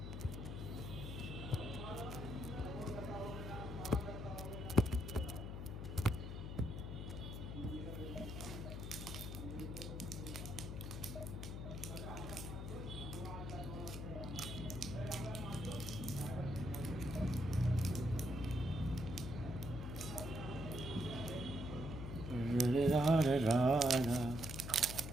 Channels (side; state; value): left; noise; hum, 6 dB below the sound